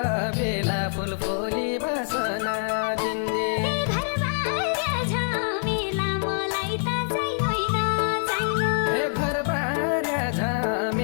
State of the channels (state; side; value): silent; right; digital silence